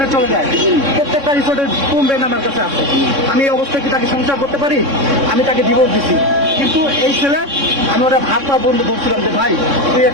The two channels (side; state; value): left; late; 3.6 ms